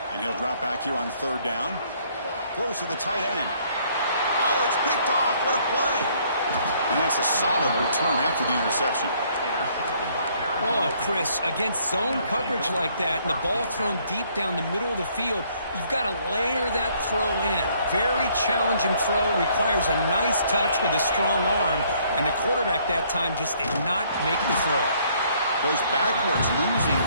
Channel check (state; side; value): inverted; both; correlation -0.64